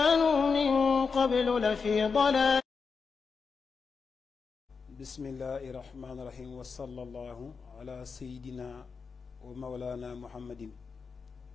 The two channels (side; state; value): right; quieter; 5.3 dB